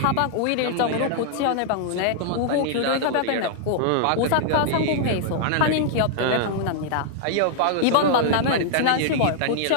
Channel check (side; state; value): both; different; correlation -0.01